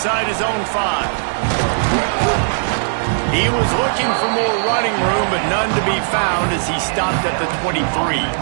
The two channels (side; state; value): left; silent; digital silence